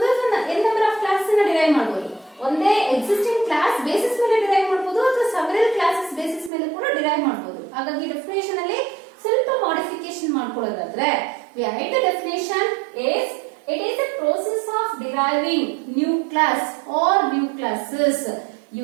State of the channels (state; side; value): drops out; left; at 6.5 s